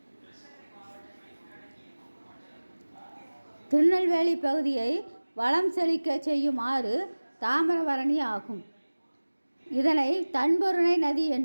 திருநெல்வேலி பகுதியை வளம் செழிக்க செய்யும் ஆறு தாமிரபரணி ஆகும். இதனை தன்பொருணை நதி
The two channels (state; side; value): inverted; both; correlation -1.00